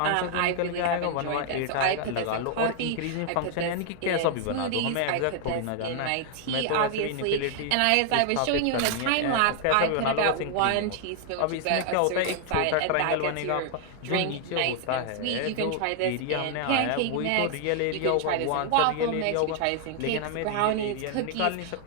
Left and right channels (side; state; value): both; different; correlation 0.00